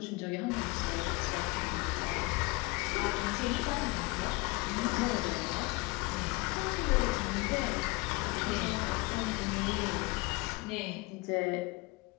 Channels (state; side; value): quieter; right; 24.5 dB